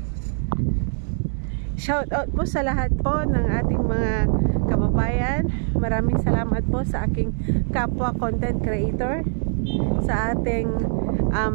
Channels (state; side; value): silent; left; digital silence